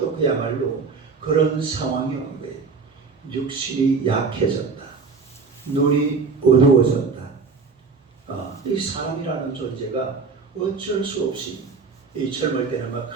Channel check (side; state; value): left; quieter; 4.8 dB